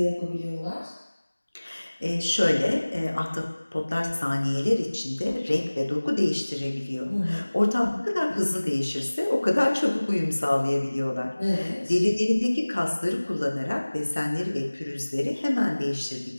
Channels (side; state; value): both; inverted; correlation -1.00